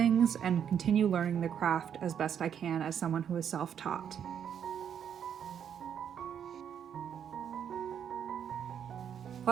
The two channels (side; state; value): left; quieter; 8.5 dB